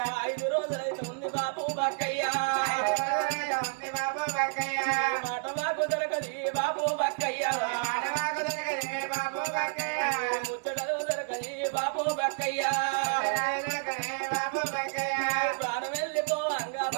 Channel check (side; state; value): left; silent; digital silence